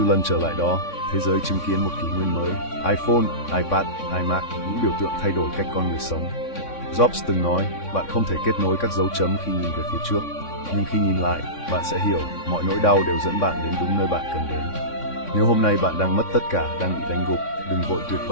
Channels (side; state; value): right; late; 3.6 ms